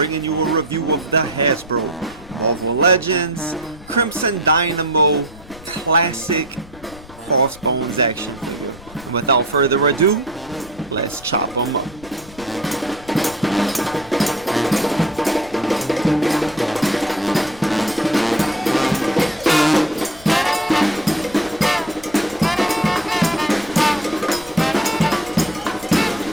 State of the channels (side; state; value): left; noise; rumble, 20 dB below the sound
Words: you a review of the Hasbro Marvel Legends Crimson Dynamo Classic Crossbones action figure. And without further ado, let's chop them up.